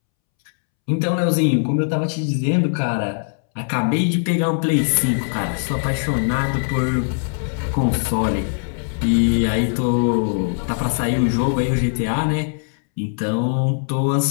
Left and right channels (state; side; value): silent; right; 65 dB below the other